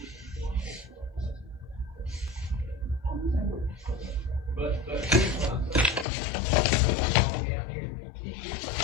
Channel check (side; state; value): right; drops out; at 6.1 s